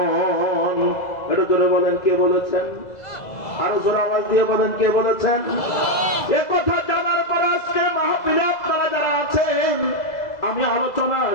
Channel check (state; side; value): late; right; 2.0 ms